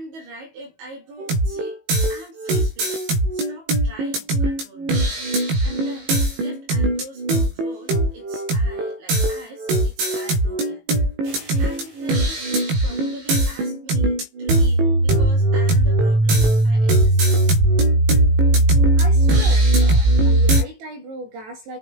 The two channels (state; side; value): late; left; 18 ms